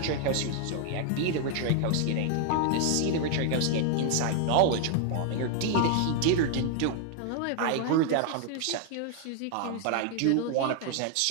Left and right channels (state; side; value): different; both; correlation 0.00